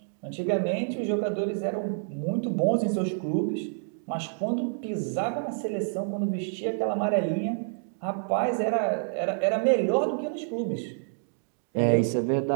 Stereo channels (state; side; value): silent; left; digital silence